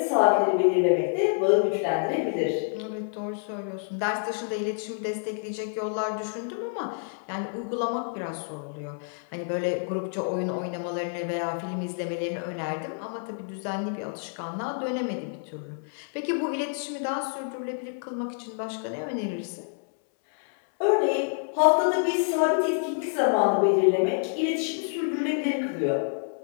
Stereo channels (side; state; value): right; silent; 60 dB below the other